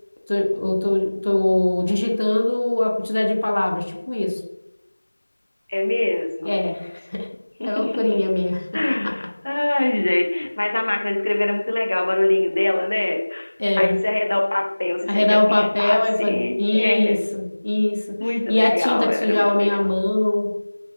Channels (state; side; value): inverted; both; correlation -1.00